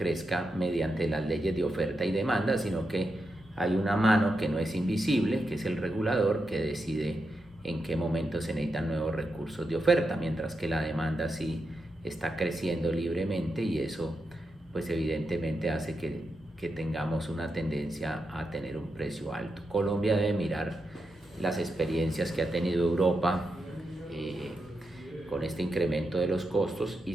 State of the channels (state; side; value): normal; both; correlation 0.86